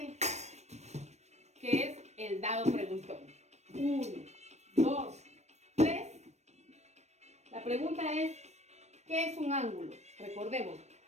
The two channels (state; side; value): late; left; 0.32 ms